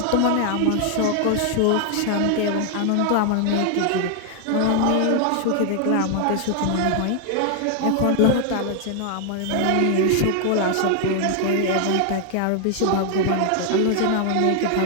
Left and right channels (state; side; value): different; both; correlation 0.00